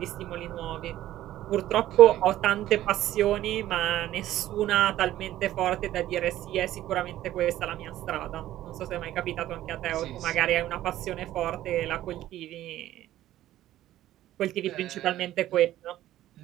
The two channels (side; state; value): left; quieter; 13.8 dB